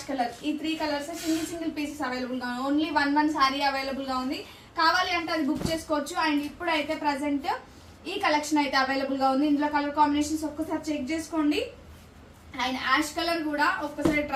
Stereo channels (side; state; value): both; identical; correlation 1.00